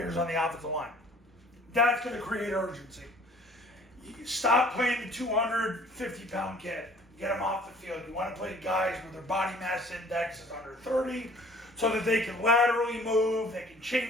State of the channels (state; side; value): normal; both; correlation 0.53